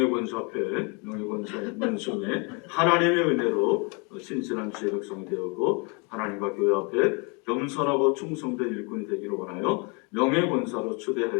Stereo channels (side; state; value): right; quieter; 32.4 dB